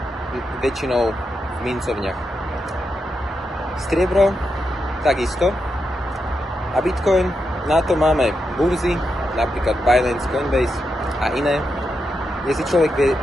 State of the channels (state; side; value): normal; both; correlation 0.85